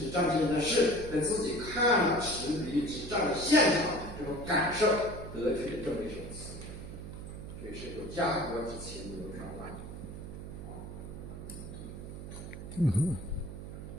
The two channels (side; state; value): right; noise; hum, 10 dB below the sound